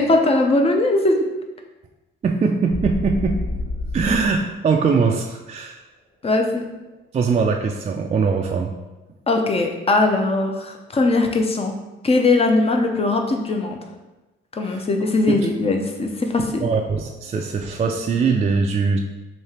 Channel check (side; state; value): both; normal; correlation 0.59